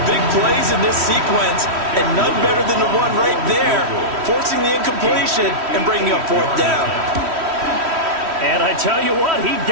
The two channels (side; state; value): left; late; 3.1 ms